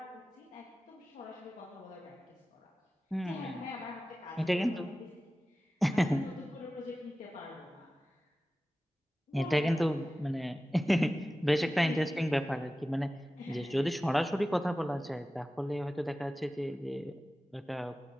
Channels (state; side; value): normal; both; correlation 0.95